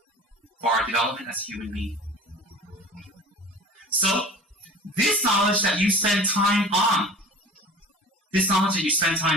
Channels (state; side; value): normal; both; correlation 0.40